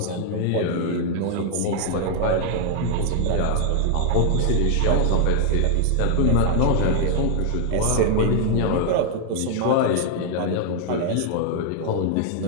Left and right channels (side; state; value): both; different; correlation 0.00